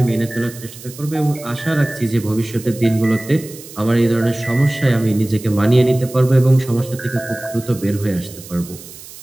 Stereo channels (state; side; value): noise; right; hiss, 17 dB below the sound